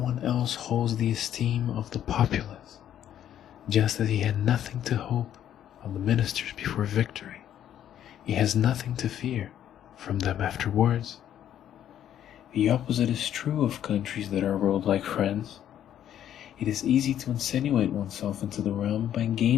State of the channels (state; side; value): quieter; right; 10.7 dB